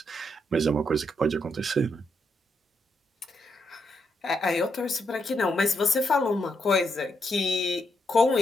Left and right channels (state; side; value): normal; both; correlation 0.79